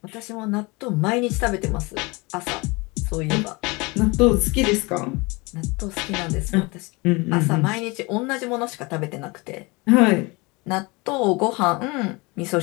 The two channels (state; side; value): quieter; right; 25.9 dB